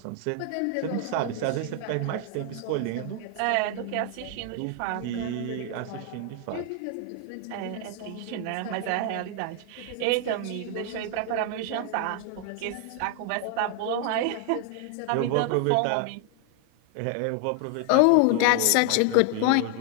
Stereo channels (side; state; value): both; different; correlation 0.00